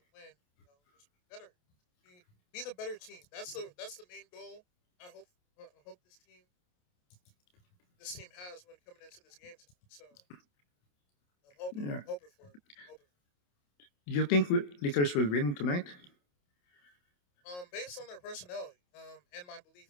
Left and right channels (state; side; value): late; right; 28 ms